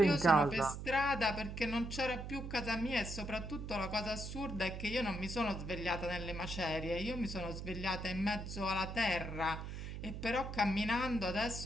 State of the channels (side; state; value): right; noise; hum, 7 dB below the sound